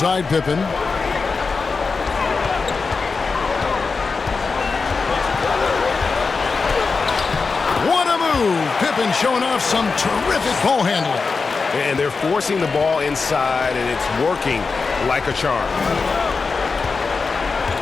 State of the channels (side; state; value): right; quieter; 4.6 dB